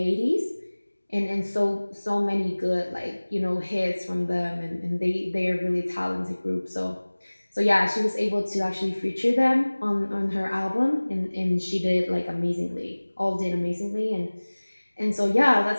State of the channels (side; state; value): both; inverted; correlation -1.00